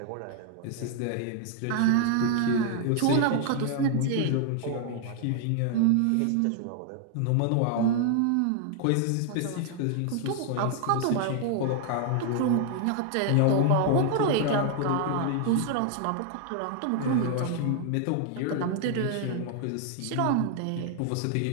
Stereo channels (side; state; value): both; different; correlation 0.00